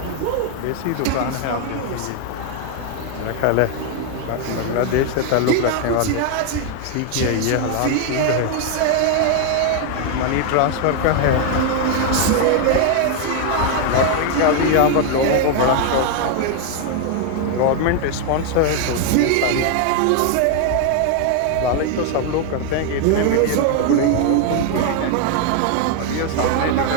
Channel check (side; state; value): both; different; correlation 0.00